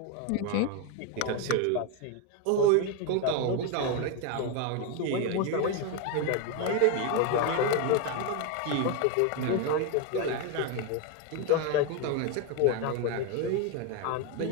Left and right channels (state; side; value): different; both; correlation 0.02